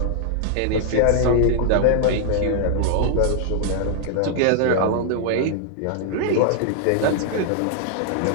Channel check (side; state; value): both; different; correlation -0.01